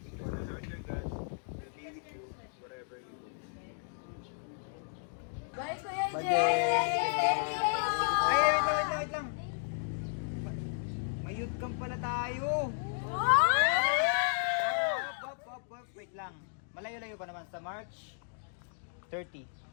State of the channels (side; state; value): right; silent; digital silence